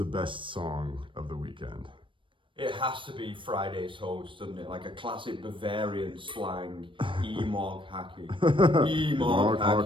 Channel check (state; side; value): late; left; 0.25 ms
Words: best song of the weekend? It has to be Friday's host, doesn't it? Like a classic Bavarian slang, E-Mog hacking. E-Mog